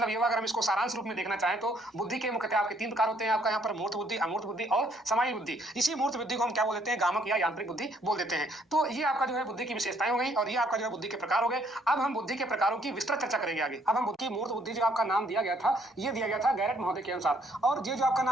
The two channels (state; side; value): normal; both; correlation 0.66